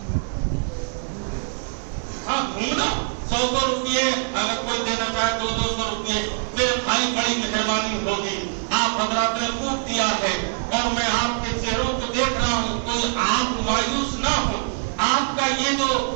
ہاں گھومنا 100 روپئے اگر کوئی دینا چاہے 200 روپئے، میرے بھائی بڑی مہربانی ہوگی، آپ حضرات نے خوب دیا ہے اور میں آپ کے چہروں کو دیکھ رہا ہوں، کوئی آپ مایوس نہ ہو۔ آپ کا یہ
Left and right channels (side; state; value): left; silent; 63 dB below the other